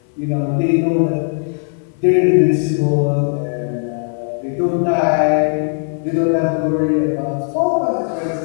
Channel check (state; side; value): silent; right; 58 dB below the other